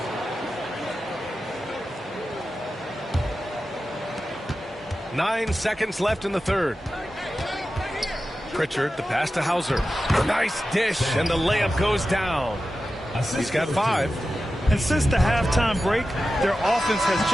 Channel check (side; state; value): both; normal; correlation 0.93